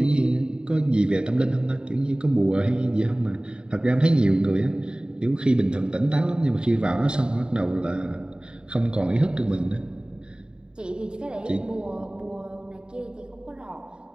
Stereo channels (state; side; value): late; left; 0.049 ms